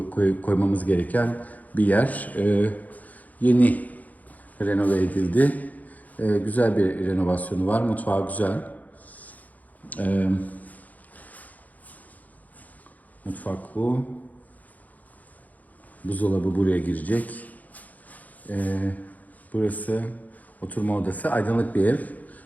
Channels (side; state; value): right; late; 0.078 ms